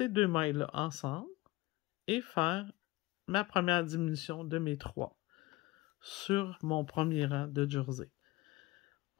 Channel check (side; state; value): right; quieter; 20.2 dB